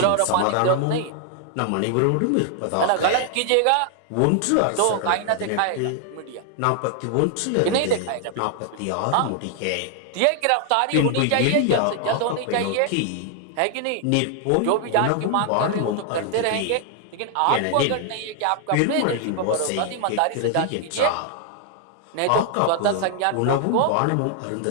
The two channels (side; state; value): both; different; correlation 0.00